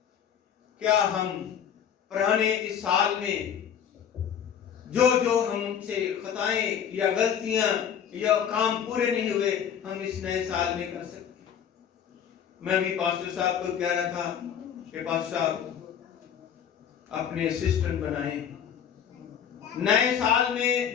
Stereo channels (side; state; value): right; quieter; 8.5 dB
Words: کیا ہم پرانے اس سال میں جو ہم سے خطائیں یا غلطیاں یا کام پورے نہیں ہوئے ہم اس نئے سال میں کر سکتے؟ میں بھی پاسٹر صاحب کو کہہ رہا تھا کہ پاسٹر صاحب اپنے اسسٹنٹ بنائیں، نئے سال میں